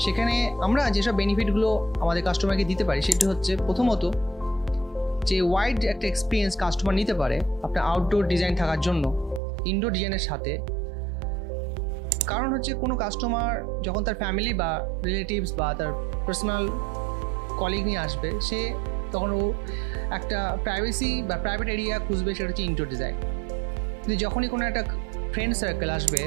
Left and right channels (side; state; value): left; drops out; at 9.4 s